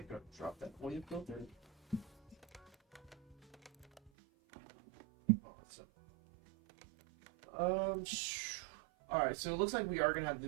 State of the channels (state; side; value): drops out; left; at 4.1 s